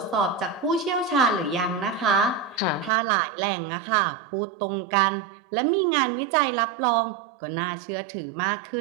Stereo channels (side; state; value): left; drops out; at 2.9 s